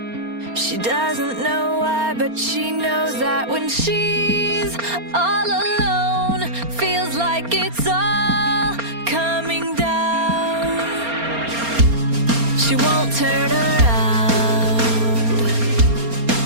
She doesn't know why, but she knows that when she's all alone, feels like it's all coming down. She won't turn around.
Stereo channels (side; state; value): left; late; 4.3 ms